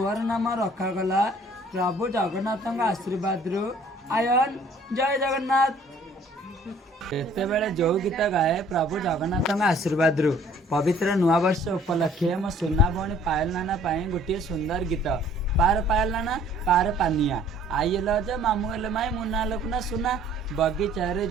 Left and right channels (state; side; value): normal; both; correlation 0.56